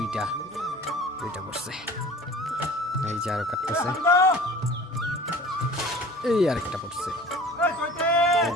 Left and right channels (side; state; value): both; normal; correlation 0.44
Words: পড়ছে। এই যে আরো কাটতেছে, এই আরেকটা পড়ছে, এই